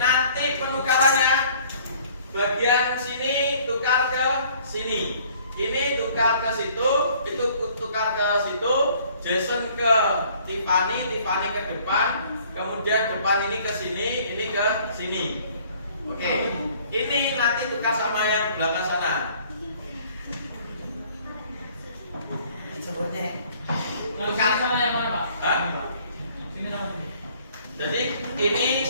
penukarannya bagian sini tukar ke sini. Ini tukar ke situ, itu tukar ke situ, Jason ke Tiffany, Tiffany ke depan, kemudian depan ini ke sini, ini ke sini. Oke, ini nanti tukar sama yang belakang sana. Tukar sama yang mana, Pak? Hah? Sini sama sini. Jadi ini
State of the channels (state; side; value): inverted; both; correlation -0.56